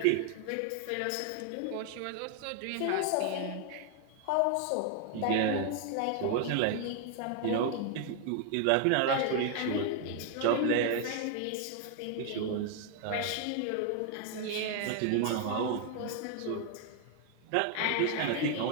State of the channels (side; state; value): both; different; correlation 0.00